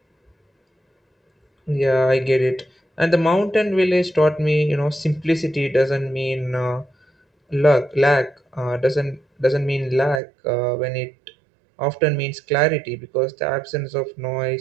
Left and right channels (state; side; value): drops out; left; at 10.2 s